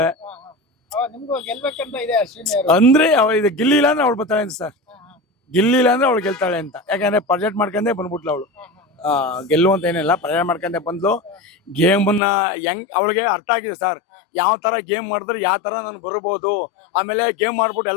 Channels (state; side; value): drops out; right; at 12.2 s